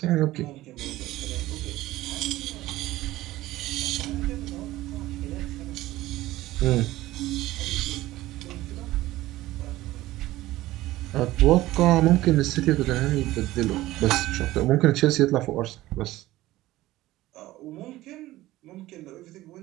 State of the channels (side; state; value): left; quieter; 16.7 dB